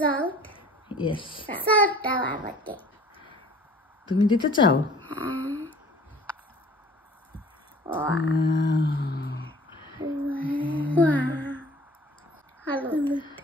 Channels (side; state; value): both; normal; correlation 0.49